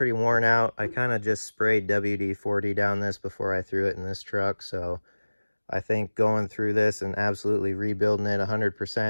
worn out. I kind of just sprayed WD-40 down this before I threw it in this truck, so I think going through this and absolutely rebuilding it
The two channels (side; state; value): both; inverted; correlation -1.00